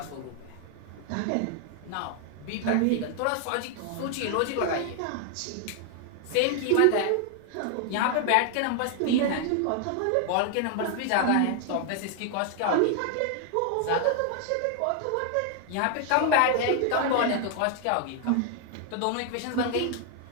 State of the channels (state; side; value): different; both; correlation 0.00